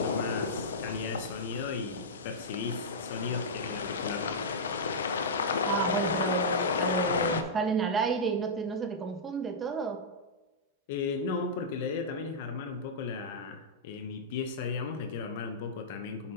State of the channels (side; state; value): both; normal; correlation -0.12